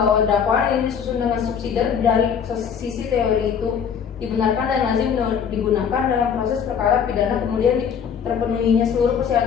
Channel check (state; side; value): quieter; right; 7.3 dB